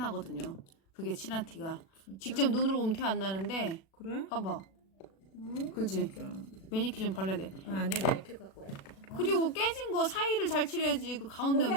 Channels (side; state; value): right; late; 36 ms